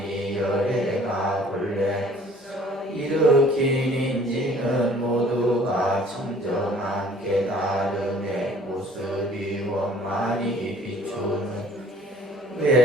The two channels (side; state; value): both; normal; correlation 0.54